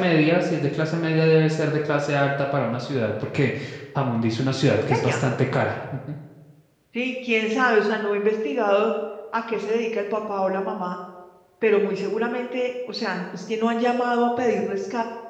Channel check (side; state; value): both; identical; correlation 1.00